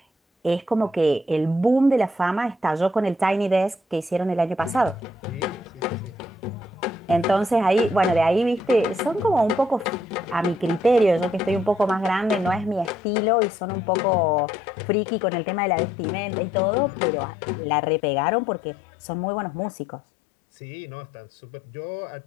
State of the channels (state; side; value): drops out; right; at 13.0 s